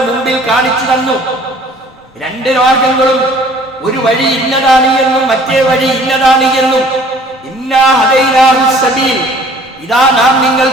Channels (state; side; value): normal; both; correlation 0.53